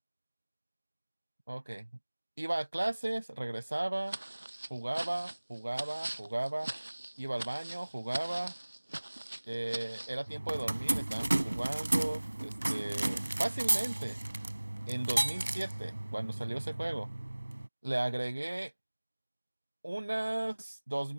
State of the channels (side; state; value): both; inverted; correlation -1.00